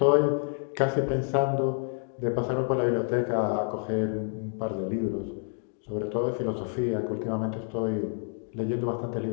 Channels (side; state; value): right; silent; 59 dB below the other